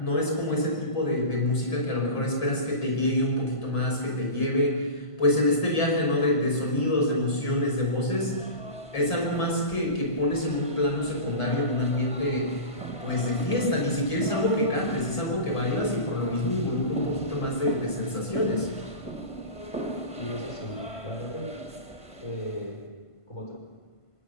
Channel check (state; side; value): late; right; 1.5 ms